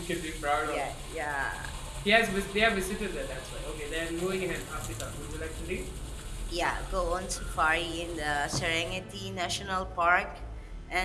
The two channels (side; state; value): both; identical; correlation 1.00